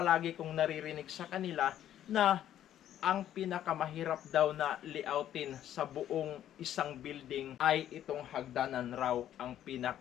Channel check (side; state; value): right; quieter; 11.3 dB